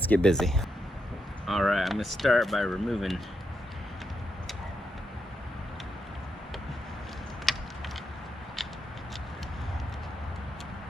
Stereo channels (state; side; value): normal; both; correlation 0.83